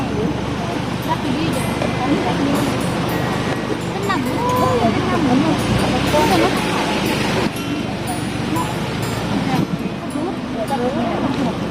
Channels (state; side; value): identical; both; correlation 1.00